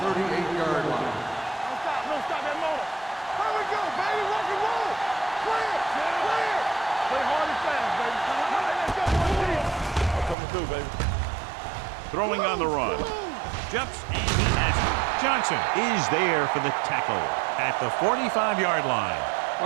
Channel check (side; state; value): left; drops out; at 10.4 s